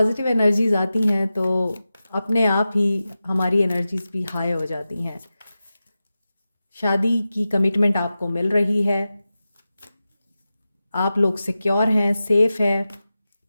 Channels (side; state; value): both; inverted; correlation -0.93